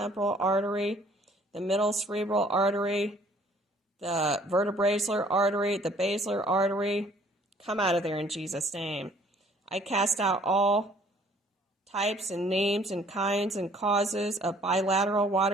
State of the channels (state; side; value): normal; both; correlation 0.58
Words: artery, the middle cerebral artery, the vertebrasilar artery, the basilar artery, come out of there in Jesus' name. I cast out all types and names and kinds and causes of bilateral